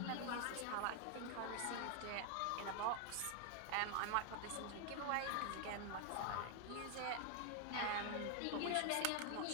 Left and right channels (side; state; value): both; different; correlation 0.00